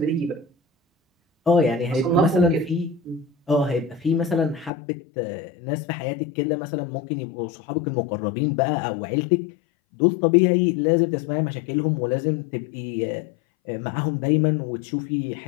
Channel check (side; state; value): right; drops out; at 4.7 s